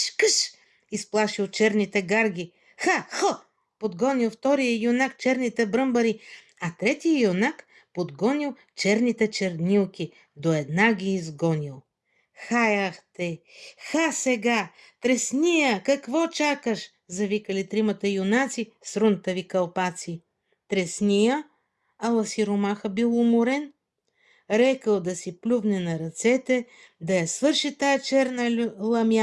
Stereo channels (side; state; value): both; identical; correlation 1.00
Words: къш! Изплашил черните гарги. Ха! Подгонил втория юнак черните бръмбари, а третия юнак подгонил черните чернилки, до една ги изгонил. Хаях те! Ха сега! Тресния! Какво чакаш? Завикали тримата юнаци с рунтави кълпаци. Тресния? Ала сиромаха бил уморен. Рекал да си плювне на ръцете, да я свърши тая черна